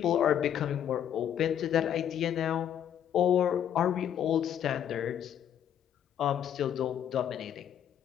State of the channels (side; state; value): right; quieter; 9.7 dB